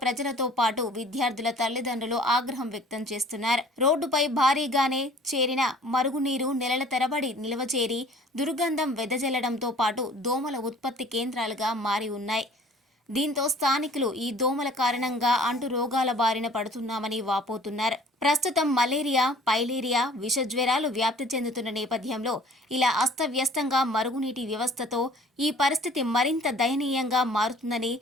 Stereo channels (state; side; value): normal; both; correlation 0.51